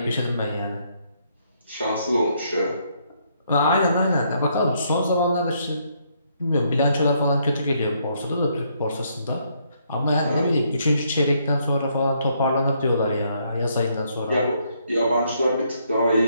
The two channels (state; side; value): inverted; both; correlation -0.72